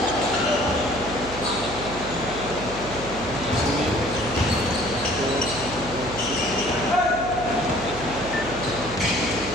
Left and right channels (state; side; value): noise; right; hum, 12 dB below the sound